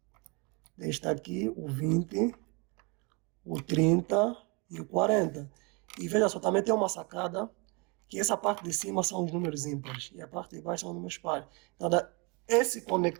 está aqui, o 20, o 30 e o 40. E veja só, também tem uma sacada, que essa parte de cima são os números ímpares e a parte de baixo são os números pares. Então, esse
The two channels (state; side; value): quieter; left; 30.5 dB